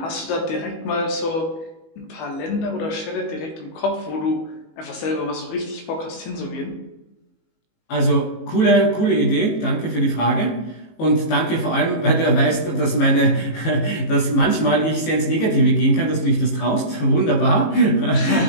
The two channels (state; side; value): late; right; 18 ms